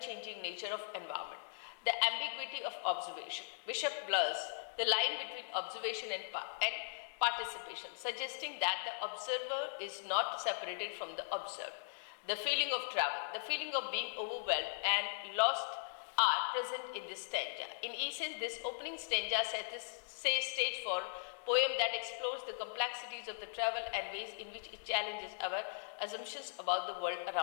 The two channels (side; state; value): right; silent; digital silence